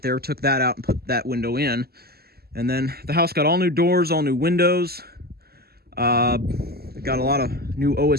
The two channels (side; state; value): left; late; 0.46 ms